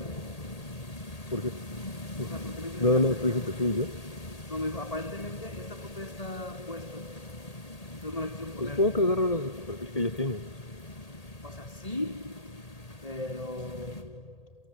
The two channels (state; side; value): late; right; 1.8 ms